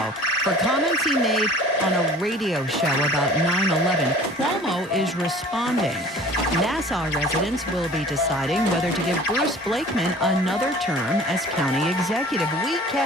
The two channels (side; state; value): both; normal; correlation 0.45